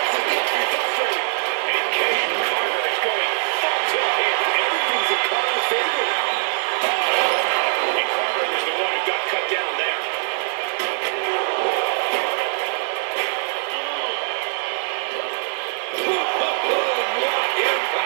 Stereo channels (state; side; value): silent; left; digital silence